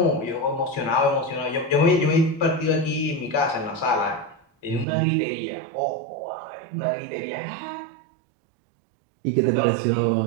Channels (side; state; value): left; drops out; at 4.9 s